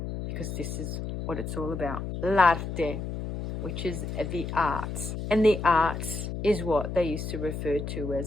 because this is what it's all about. L'arte, which is the arts. And the arts is what they used to refer to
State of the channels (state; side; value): noise; left; hum, 5 dB below the sound